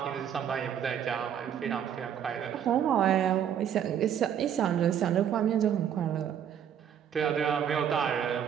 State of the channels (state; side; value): quieter; left; 9.1 dB